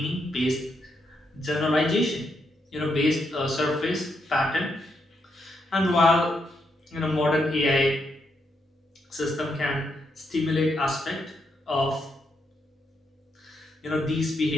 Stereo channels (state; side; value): normal; both; correlation 0.80